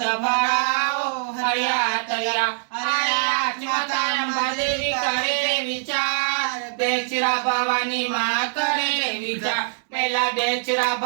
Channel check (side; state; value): left; silent; 63 dB below the other